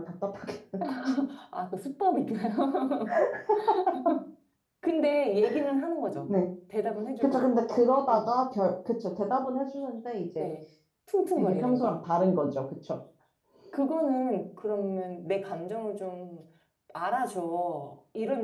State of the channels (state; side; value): identical; both; correlation 1.00